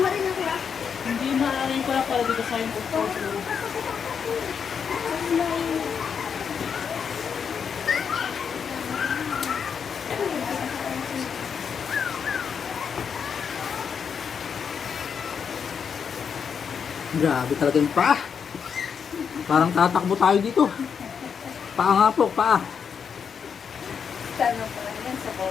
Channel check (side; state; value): right; quieter; 6.8 dB